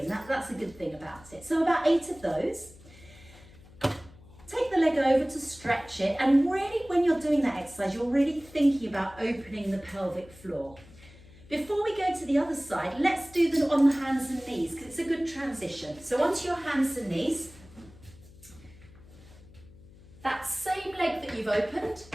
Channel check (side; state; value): left; noise; hum, 22 dB below the sound